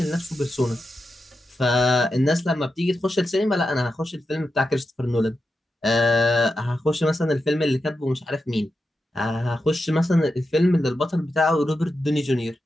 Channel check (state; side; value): normal; both; correlation 0.89